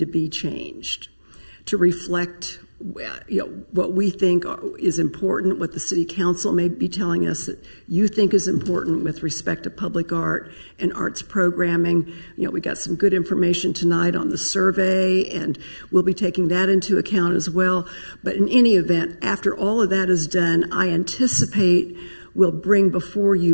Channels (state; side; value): inverted; both; correlation -1.00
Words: be changed to reflect what we think is important, what the City Council may be telling us that you think is important with respect to public art and arts programming. We got some good information tonight on the survey, and we'll be taking that into account as well. But in any event, after all of that is done, I anticipate we'll bring before